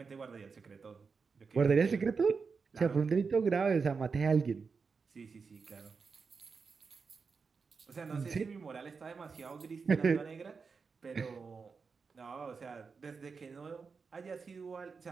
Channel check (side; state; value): left; quieter; 5.1 dB